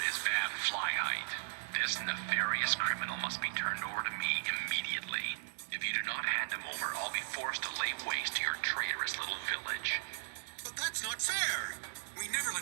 is Van Flyheight. This nefarious criminal must be turned over to me immediately. If you do not hand him over, I'll be forced to lay waste to your traitorous little village. But that's not fair! We never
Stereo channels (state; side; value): silent; left; digital silence